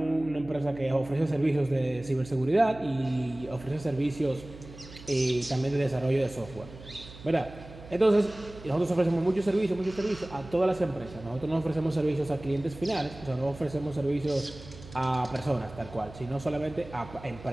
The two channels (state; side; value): noise; right; hum, 17 dB below the sound